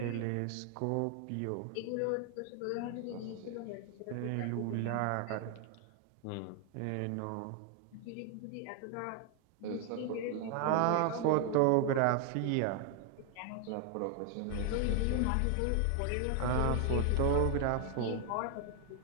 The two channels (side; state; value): both; different; correlation 0.00